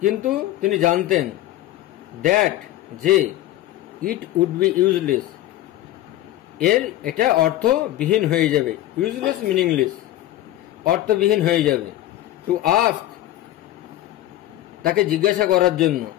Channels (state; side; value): quieter; right; 14.3 dB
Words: কিন্তু তিনি জানতেন, দ্যাট, যে, ইট উড বি ইউজলেস, এটা অর্থবিহীন হয়ে যাবে। ইউজলেস মিনিংলেস, অর্থবিহীন হয়ে যাবে। টু আস্ক, তাকে জিজ্ঞাসা করার জন্য,